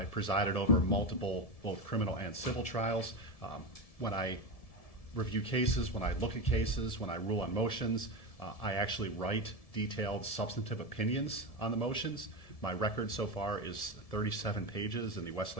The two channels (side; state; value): right; late; 1.7 ms